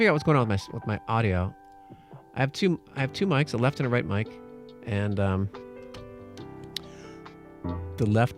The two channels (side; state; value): both; identical; correlation 1.00